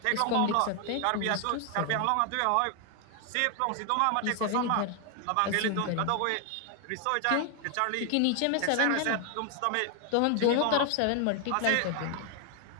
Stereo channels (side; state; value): both; different; correlation 0.00